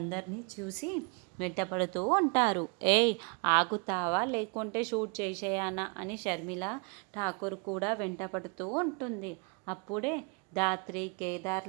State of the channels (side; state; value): left; quieter; 34.2 dB